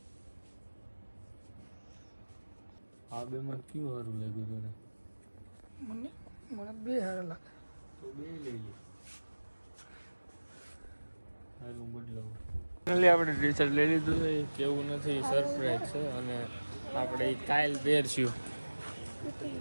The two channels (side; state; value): both; inverted; correlation -1.00